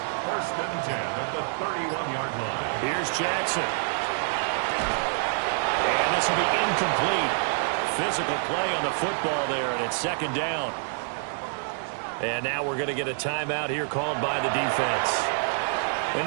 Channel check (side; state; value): left; silent; digital silence